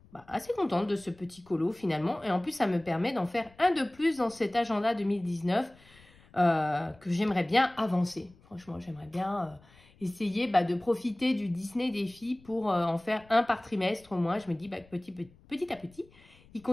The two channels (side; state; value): left; noise; rumble, 27 dB below the sound